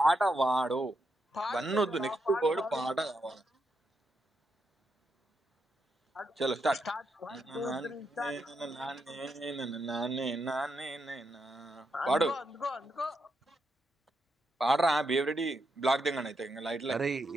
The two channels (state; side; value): normal; both; correlation 0.82